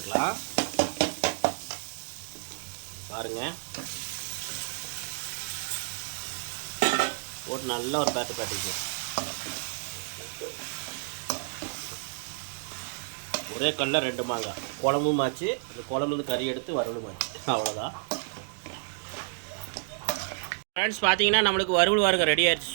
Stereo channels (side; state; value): left; silent; digital silence